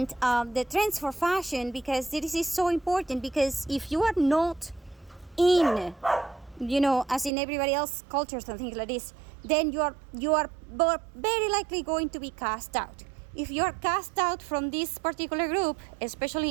the trends for fashion, because this is so important. Because if you are not in, as in everybody else cultures and things like this, then you are very likely going to be cast out. If you are cast out from this particular group,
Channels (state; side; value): drops out; left; at 7.3 s